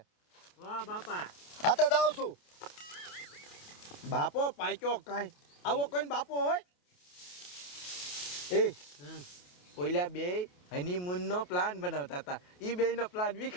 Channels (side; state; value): right; late; 28 ms